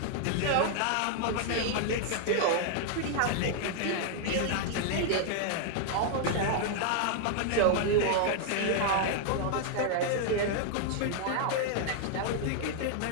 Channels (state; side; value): different; both; correlation 0.00